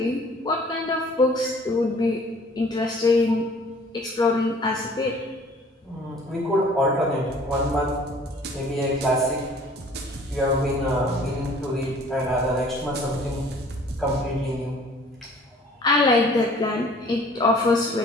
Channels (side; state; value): both; normal; correlation 0.53